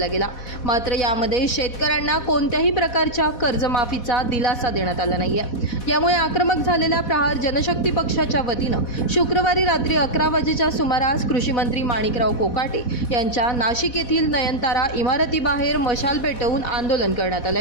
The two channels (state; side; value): late; right; 4.1 ms